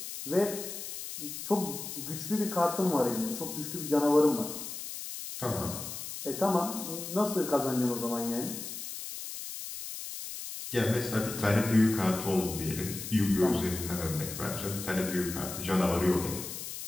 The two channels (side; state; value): left; noise; hiss, 8 dB below the sound